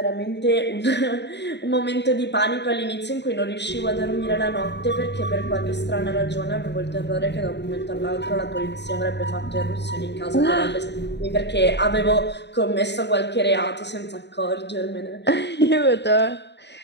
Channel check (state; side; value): late; right; 0.50 ms